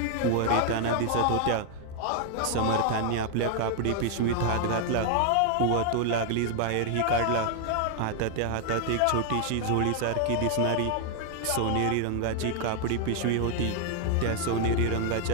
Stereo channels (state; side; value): different; both; correlation 0.00